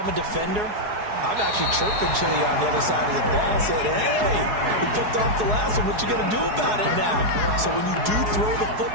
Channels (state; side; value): late; left; 4.7 ms